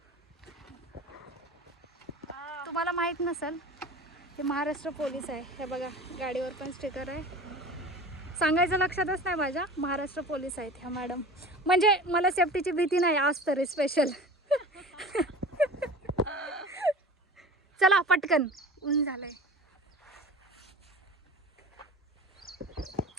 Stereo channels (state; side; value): normal; both; correlation 0.37